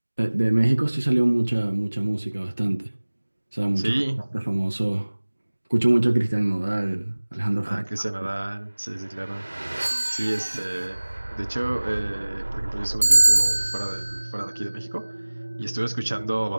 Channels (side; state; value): both; inverted; correlation -1.00